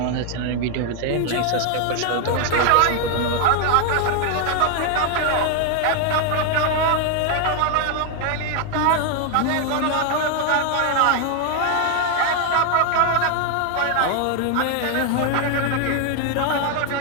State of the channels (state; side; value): different; both; correlation 0.00